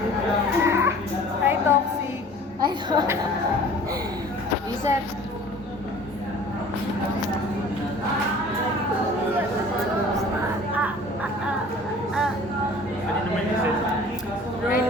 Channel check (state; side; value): normal; both; correlation 0.47